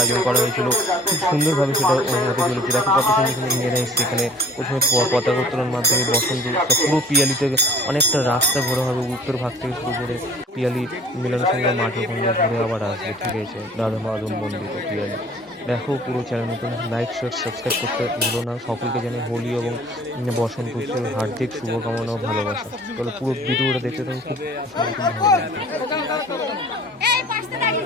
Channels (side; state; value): both; normal; correlation 0.50